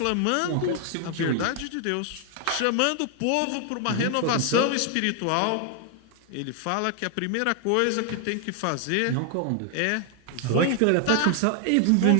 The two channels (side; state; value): both; different; correlation 0.00